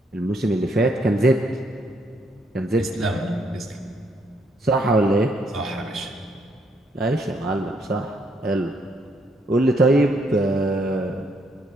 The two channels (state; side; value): normal; both; correlation 0.72